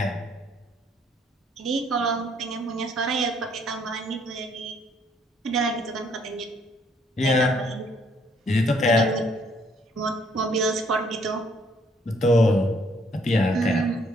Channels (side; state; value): both; normal; correlation 0.66